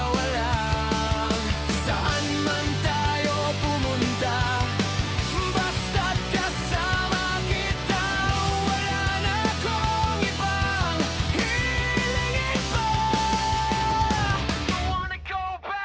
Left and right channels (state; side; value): identical; both; correlation 1.00